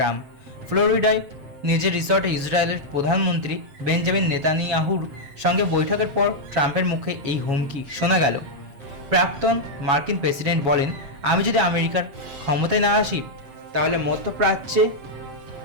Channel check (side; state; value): left; late; 7.6 ms